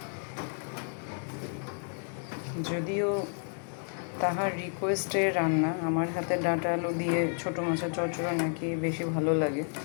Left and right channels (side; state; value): right; silent; 57 dB below the other